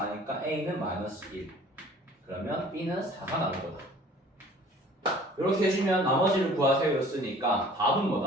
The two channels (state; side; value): normal; both; correlation 0.50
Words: a는 마이너스 1. 그러면 b는 4가 나올 거다. 이렇게 해주면 나머지를 구하세요 였으니까 답은